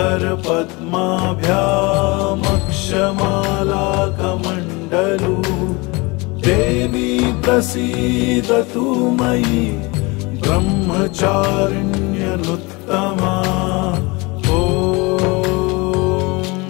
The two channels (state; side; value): quieter; right; 25.8 dB